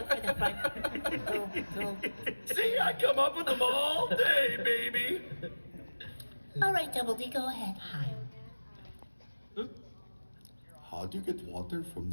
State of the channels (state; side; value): inverted; both; correlation -1.00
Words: for the front. See, I come up with them all day, baby. All right, Double D, go ahead. How do you get water from